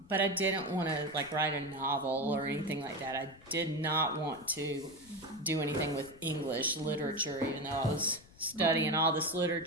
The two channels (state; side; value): noise; left; rumble, 24 dB below the sound